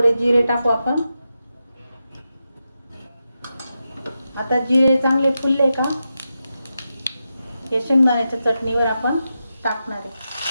जिरे टाकू आपण। आता जिरे चांगले फुलले का हे शेंगदाण्याच्या चटणीवर आपण टाकणार आहे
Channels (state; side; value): inverted; both; correlation -0.89